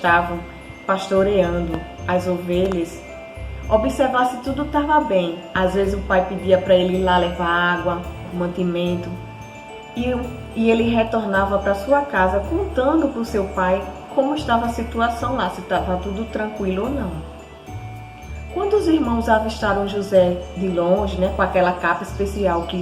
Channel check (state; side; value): identical; both; correlation 1.00